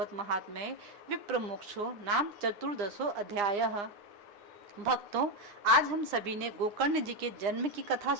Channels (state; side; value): late; left; 9.9 ms